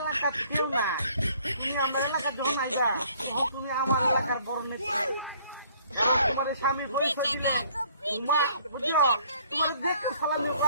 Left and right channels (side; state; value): both; inverted; correlation -0.60